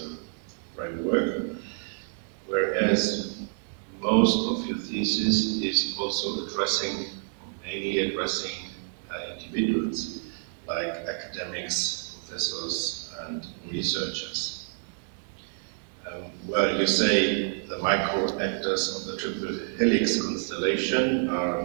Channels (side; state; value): left; silent; 59 dB below the other